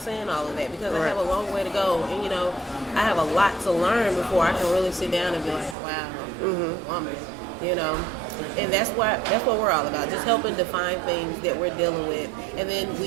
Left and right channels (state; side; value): drops out; left; at 5.8 s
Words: saying all of that because I have a long way to go. And, I have a lot to learn before I can really sit down and be like, wow, woman, And that's what we're all about, just helping define things that we're dealing with. And then